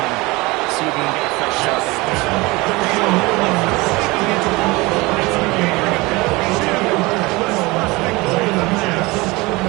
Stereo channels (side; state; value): left; quieter; 23.0 dB